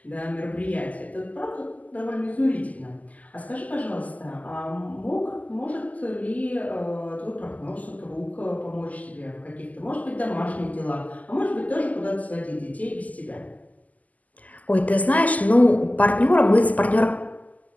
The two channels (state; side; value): late; right; 0.077 ms